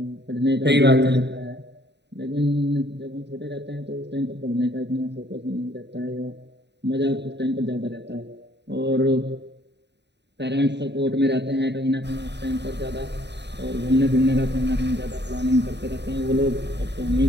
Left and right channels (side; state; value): left; late; 0.50 ms